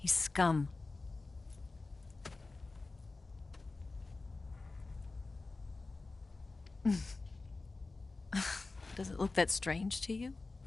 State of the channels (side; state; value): right; quieter; 3.6 dB